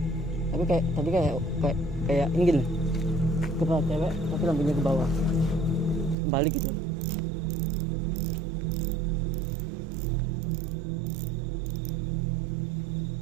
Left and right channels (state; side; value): drops out; left; at 6.2 s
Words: Tapi kayak ini gini. Kepala cewek tapi lampunya ke bawah. Balik gitu.